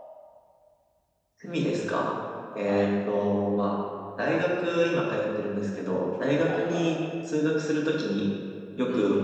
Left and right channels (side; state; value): both; identical; correlation 1.00